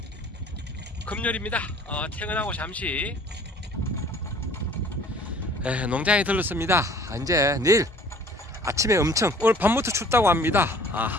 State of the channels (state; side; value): normal; both; correlation 0.52